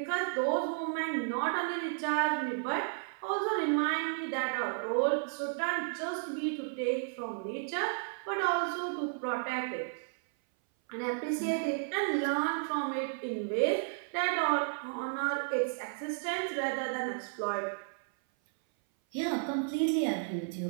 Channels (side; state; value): left; silent; 56 dB below the other